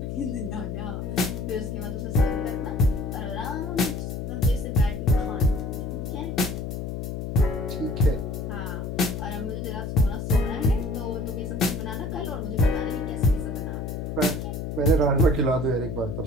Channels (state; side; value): noise; left; hum, 4 dB below the sound